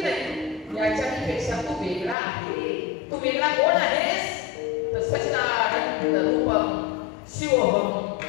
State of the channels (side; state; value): right; drops out; at 2.1 s